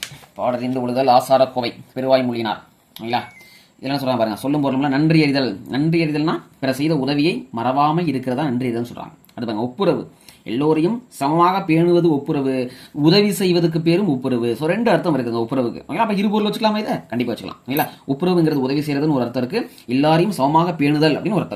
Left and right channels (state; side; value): identical; both; correlation 1.00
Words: பாடறிந்து ஒழுதல் ஆசாரக்கோவை பெருவாய் மொழியினார். இல்லைங்களா, இதெல்லாம் சொல்கிறாங்க பாருங்க, சொல்லும் பொருளும்னா நன்றி அறிதல். நன்றி அறிதல்னா பிற செய்த உதவியை மறவாமல் இருக்கிறதா நன்றி அறிதல்னு சொல்கிறாங்க. அடுத்து பாருங்க, ஒப்புரவு, எல்லோரையும் சமமாக பேணுவது ஒப்புரவு, உதவி செய்வதற்கு பேரும் ஒப்புரவு. ஸோ 2 அர்த்தம் இருக்குங்க ஒப்புரவுக்கு. ஓகேங்களா, அப்போ 2 பொருள் வச்சுக்கலாமா, இதை கண்டிப்பாக வச்சுக்கலாம். இல்லைங்களா, ஒப்புரவுங்கிறது உதவி செய்யறதுன்னு ஒரு அர்த்தம் இருக்கு, எல்லாரையும் சமமாக பேணுதல் அப்படின்னு ஒரு